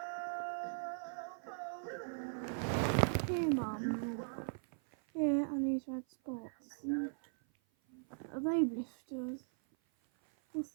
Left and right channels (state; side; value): silent; left; 52 dB below the other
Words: Hey, Mum. Here are these red spots. Are they blisters? What's